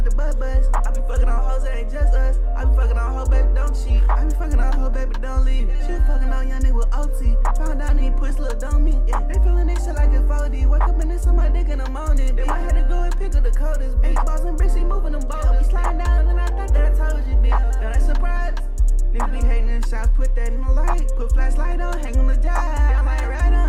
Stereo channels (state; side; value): identical; both; correlation 1.00